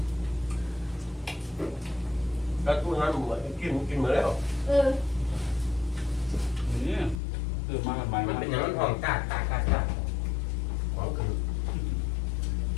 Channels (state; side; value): drops out; right; at 7.2 s